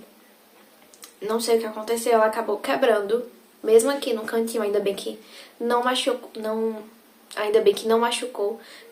não sei o que aconteceu, ela acabou quebrando, mesmo aqui no cantinho, ainda bem que não machucou,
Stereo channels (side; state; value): both; identical; correlation 1.00